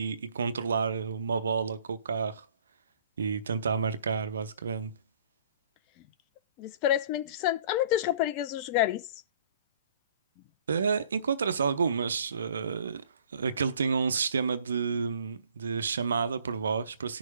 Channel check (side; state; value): both; inverted; correlation -0.55